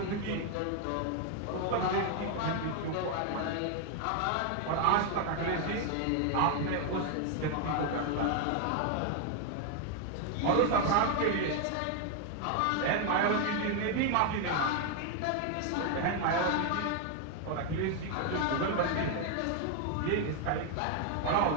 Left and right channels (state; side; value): different; both; correlation 0.01